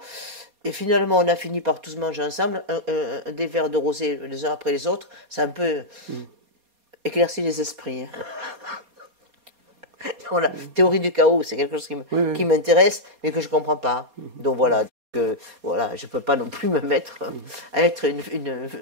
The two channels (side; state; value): left; late; 4.2 ms